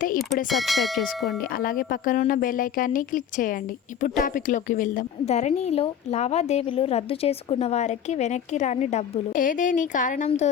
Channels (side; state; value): right; quieter; 8.6 dB